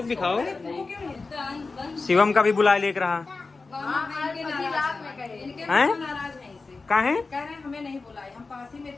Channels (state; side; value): quieter; right; 4.0 dB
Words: भी खाओ। शिवम का भी बुला लेकर रहा हैं? कहाँ है? कह रहे हैं हमें नहीं बुलाए, हम पास ही में